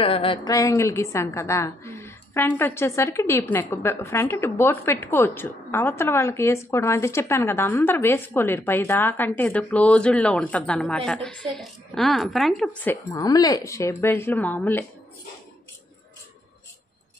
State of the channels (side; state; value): both; normal; correlation 0.75